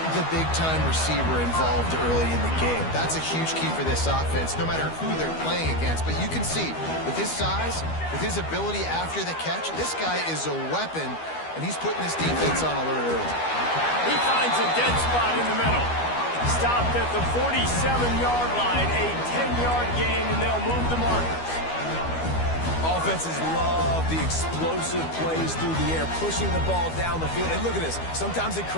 the big-time receiver involved early in the game. That's a huge key for this offense, no matter who they're playing against. But you can see, with his size, with his ability after the catch, this guy is a weapon, and he's putting this defense on alert early. He finds a dead spot in the middle. Stopped at the 47-yard line, a 10-yard gain, and they'll move the markers. Offenses love the explosive plays through the air, pushing the ball down the field. And look at this. Sometimes it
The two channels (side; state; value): right; late; 12 ms